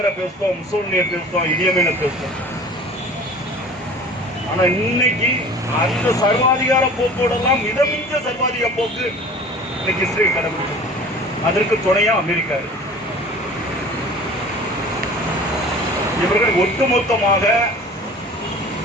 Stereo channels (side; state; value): both; normal; correlation 0.43